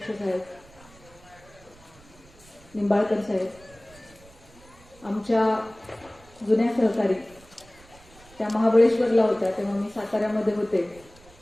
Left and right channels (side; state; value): right; noise; rumble, 25 dB below the sound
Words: साहेब, निंबाळकर साहेब, आमच्या जुन्या सहकारी, त्या महाबळेश्वरला होत्या तेव्हा मी साताऱ्यामध्ये होते,